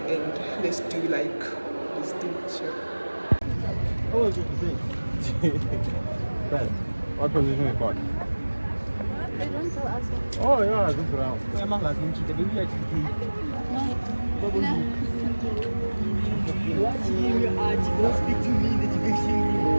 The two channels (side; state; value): both; inverted; correlation -1.00